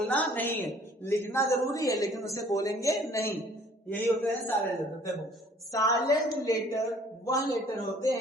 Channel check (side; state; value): both; normal; correlation 0.56